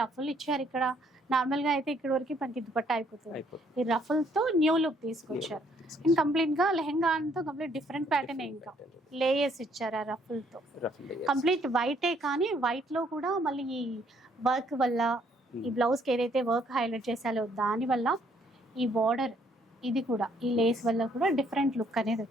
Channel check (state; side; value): normal; both; correlation 0.66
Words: రఫుల్ ఇచ్చారు ఇక్కడ. నార్మల్ గా అయితే ఇక్కడ వరకు మనకి దుపట్టా అయిపోతుంది. ఈ రఫుల్ తో న్యూ లుక్ తీసుకొచ్చారు. అండ్ కంప్లీట్ గా లెహంగా అంతా కంప్లీట్ డిఫరెంట్ ప్యాటర్న్. ఇంకా లేయర్స్ ఇచ్చారు ఆ రఫుల్ తో. కంప్లీట్ వైటే, కానీ వైట్ లో కూడా మళ్ళీ ఈ వర్క్ వల్ల, ఈ బ్లౌజ్ కి ఏదైతే వర్క్ హైలైట్ చేశారో దాని వల్ల, ఈ బార్డర్ ఇది కూడా, ఈ లేస్ వల్ల కూడా డిఫరెంట్ లుక్ అనేది